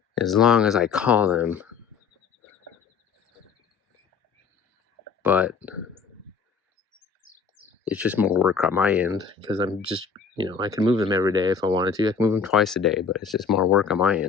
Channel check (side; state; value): right; quieter; 5.9 dB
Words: As long as I call them. But it's just more work on my end because I'm just, I can move them every day if I wanted to. I can move them twice a day, but it's just more work on my